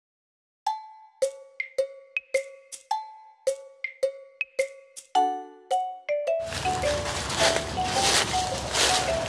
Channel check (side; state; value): both; identical; correlation 1.00